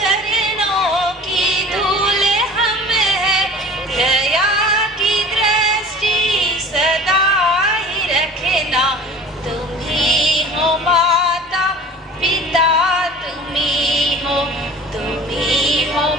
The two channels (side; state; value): both; normal; correlation 0.43